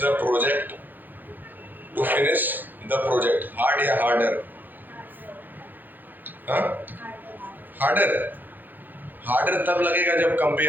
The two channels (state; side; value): late; left; 0.088 ms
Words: the project, to finish the project, hard या हार्डर? हार्डर, हार्डर तब लगेगा जब